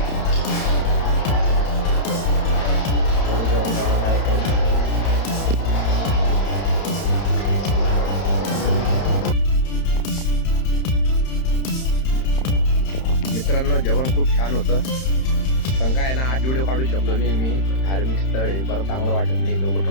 जेवण करायला काय मित्रांनो जेवण खूप छान होतं. पण काय ना आज व्हिडिओ काढू शकलो नाही मी. धार्मिक स्थळ आहे, बरं चांगलं वाटत नाही लोक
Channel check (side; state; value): right; late; 31 ms